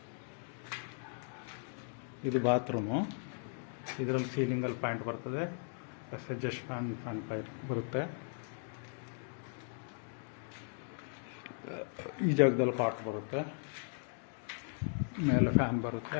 ಇದು ಬಾತ್ರೂಮು. ಇದರಲ್ಲಿ ಸೀಲಿಂಗಲ್ಲಿ ಪಾಯಿಂಟ್ ಬರ್ತದೆ, ಎಡ್ಜಸ್ಟ್ ಫ್ಯಾನ್ ಪೈರ್ ಬರುತ್ತೆ. ಈ ಜಾಗದಲ್ಲಿ ಕಾಟ್ ಬರುತ್ತೆ, ಮೇಲೆ ಫ್ಯಾನ್ ಬರುತ್ತೆ,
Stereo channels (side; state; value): right; silent; 53 dB below the other